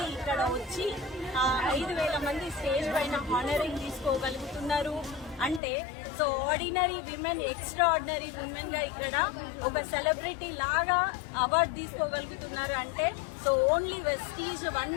ఇక్కడ వచ్చి 5,000 మంది స్టేజ్ పైన హానరింగ్ తీసుకోగలుగుతున్నారు. అంటే so ordinary women extra ordinary women గా ఇక్కడ ఒక సెలబ్రిటీ లాగా అవార్డు తీసుకోగలుగుతున్నారు. అంటే so only Vestige, one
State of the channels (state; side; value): drops out; right; at 5.6 s